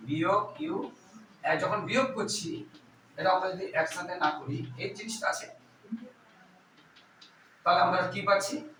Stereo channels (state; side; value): identical; both; correlation 1.00